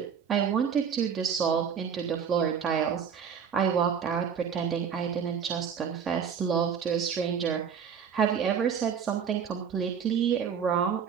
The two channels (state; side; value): quieter; left; 7.3 dB